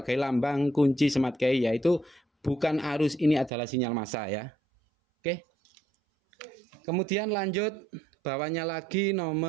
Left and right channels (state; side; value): drops out; left; at 3.5 s